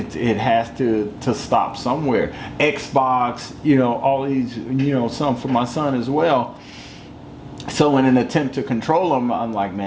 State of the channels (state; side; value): identical; both; correlation 1.00